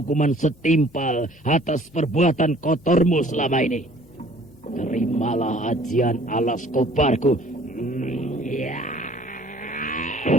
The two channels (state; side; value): normal; both; correlation 0.54